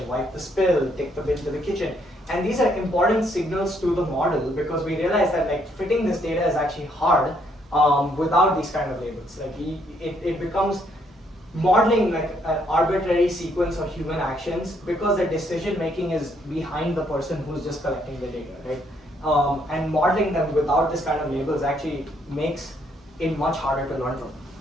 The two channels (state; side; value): normal; both; correlation 0.70